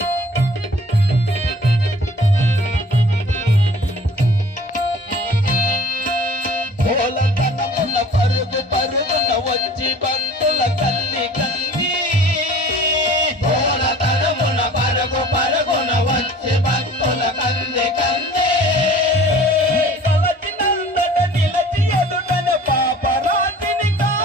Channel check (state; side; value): normal; both; correlation 0.47